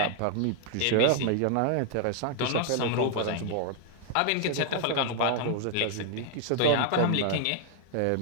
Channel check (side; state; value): both; different; correlation 0.00